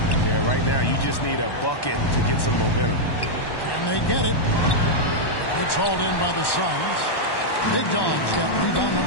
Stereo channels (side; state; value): right; late; 1.1 ms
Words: Yeah, right now you just need a bucket to get some momentum. Can they get it? It's hauled in by the Suns. Big Dog's got rebound